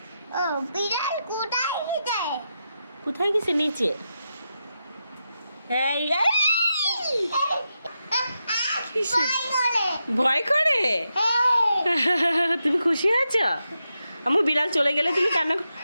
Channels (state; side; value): inverted; both; correlation -0.87